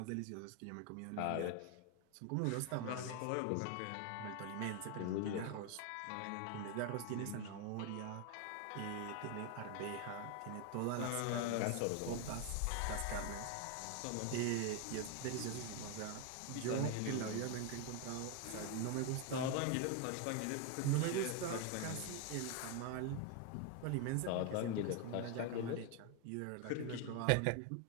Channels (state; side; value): different; both; correlation 0.01